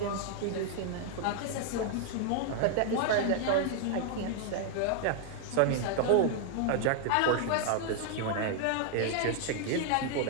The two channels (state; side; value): different; both; correlation 0.00